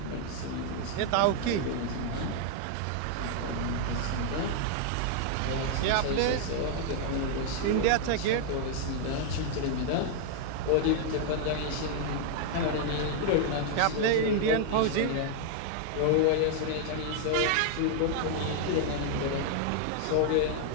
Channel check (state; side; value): different; both; correlation 0.00